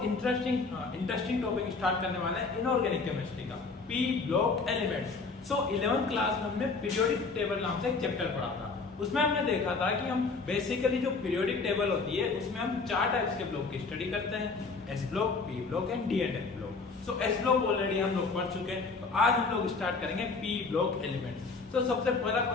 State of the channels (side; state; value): right; quieter; 4.3 dB